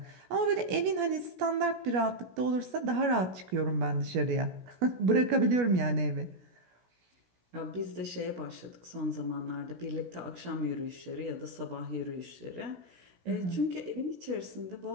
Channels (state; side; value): late; left; 16 ms